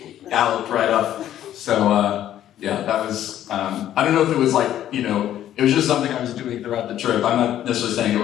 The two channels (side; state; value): right; quieter; 11.7 dB